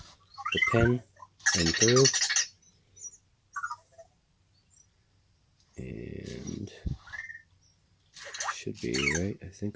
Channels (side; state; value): both; identical; correlation 1.00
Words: the pin in through, and should be right, I